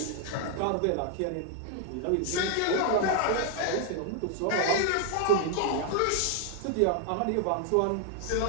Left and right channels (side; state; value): both; different; correlation 0.00